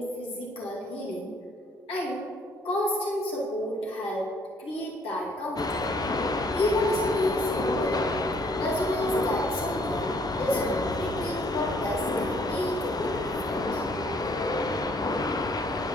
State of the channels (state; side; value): normal; both; correlation 0.63